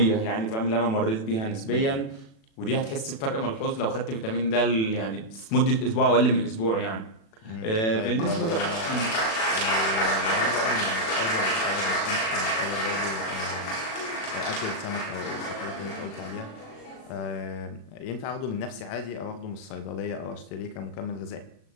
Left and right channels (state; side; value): late; right; 36 ms